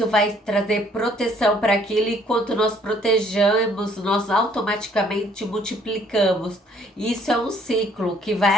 vai trazer proteção para aquilo e quando nós protegemos, nós automaticamente multiplicamos. Isso é um ciclo que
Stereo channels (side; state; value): both; normal; correlation 0.62